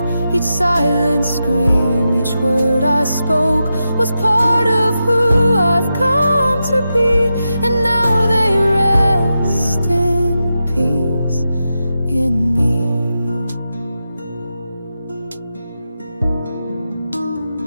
Each silent scream, each word I spoke was part of who I've come to be, and now they rest in peace in me.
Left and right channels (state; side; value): inverted; both; correlation -0.89